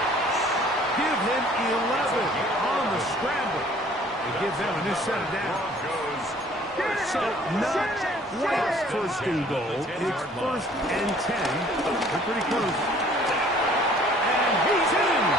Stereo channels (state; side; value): normal; both; correlation 0.55